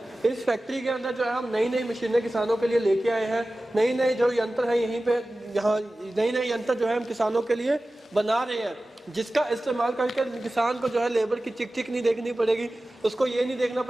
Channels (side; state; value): both; normal; correlation 0.96